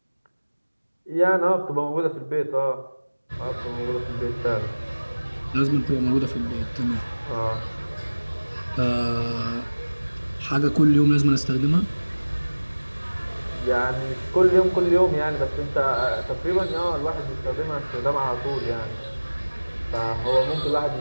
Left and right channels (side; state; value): both; inverted; correlation -1.00